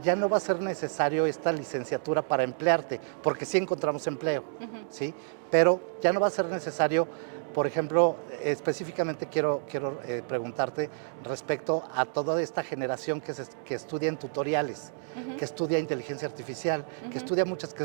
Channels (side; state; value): left; silent; digital silence